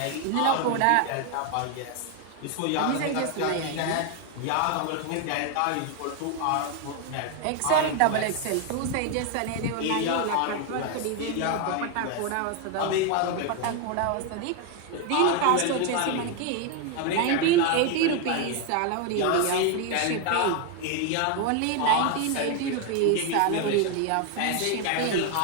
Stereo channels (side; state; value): both; different; correlation 0.01